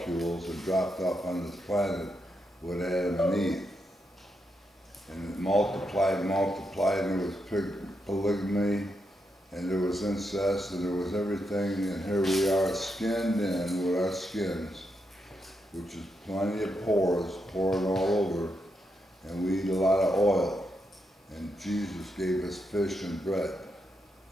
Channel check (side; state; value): both; normal; correlation 0.83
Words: and dropped off on this planet with Adam and Eve. And it multiplied, and there was polygamy, and there was incest, and there was everything, and here we are skinned in with our skins, which is plenty of pores pouring all over, and we eat a lot of oil. And Jesus gave us fish and bread,